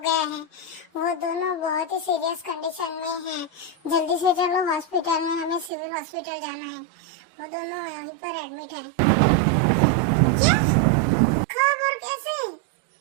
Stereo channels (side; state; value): left; drops out; at 5.7 s